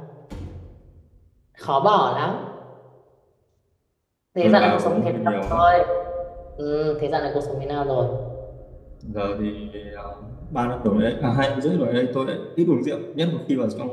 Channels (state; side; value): identical; both; correlation 1.00